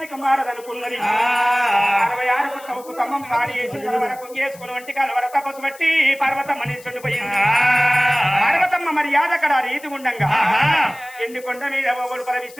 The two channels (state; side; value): noise; left; hiss, 21 dB below the sound